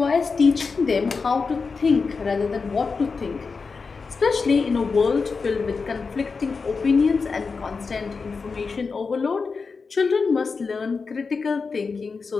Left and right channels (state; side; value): quieter; right; 4.8 dB